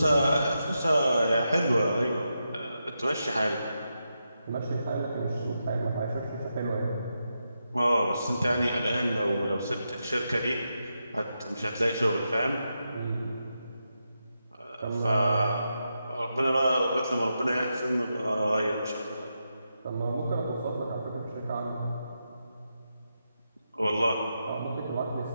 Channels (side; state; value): both; inverted; correlation -0.86